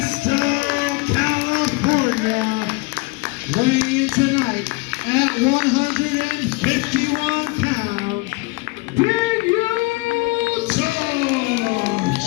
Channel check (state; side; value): quieter; right; 24.4 dB